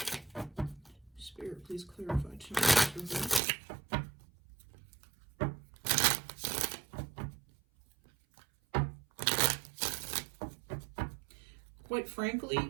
Spirit, please clarify Temperance reverse. Quite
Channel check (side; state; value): left; drops out; at 3.4 s